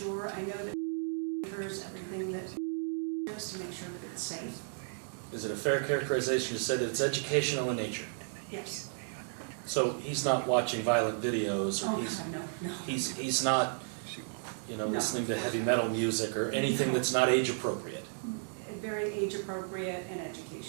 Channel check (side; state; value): left; silent; digital silence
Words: I know that monitors everything that is to make sure that it's safe. Is it a fair characterization to say that it's educational in nature? Yes. So he's not watching violent videos, or Oh, God, no. he's not, No, listening to of course heavy not. metal music or anything No. that's not age appropriate. Very age appropriate and